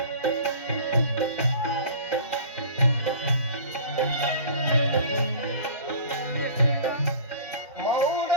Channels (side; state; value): both; inverted; correlation -0.41